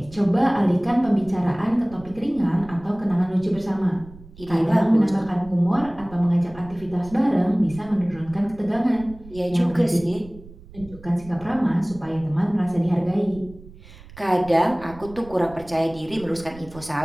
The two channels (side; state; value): right; noise; rumble, 19 dB below the sound